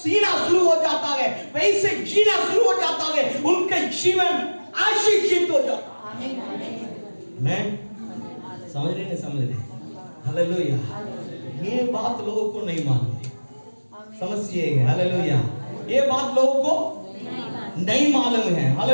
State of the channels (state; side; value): inverted; both; correlation -1.00